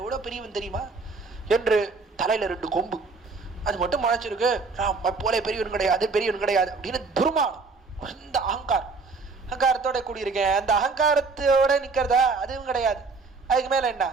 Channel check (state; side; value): quieter; left; 4.2 dB